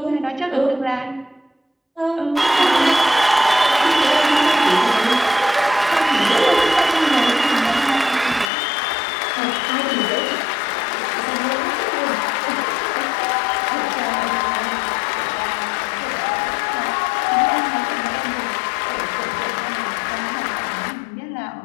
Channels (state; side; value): drops out; right; at 8.5 s